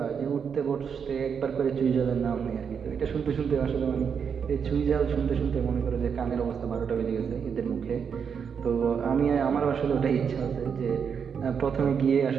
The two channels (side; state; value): left; quieter; 6.8 dB